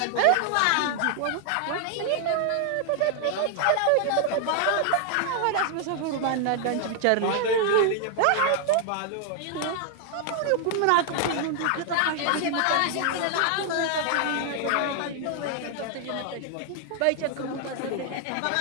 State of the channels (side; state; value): both; different; correlation 0.00